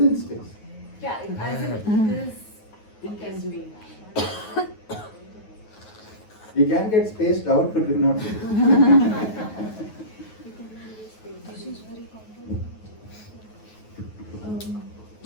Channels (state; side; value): late; right; 9.4 ms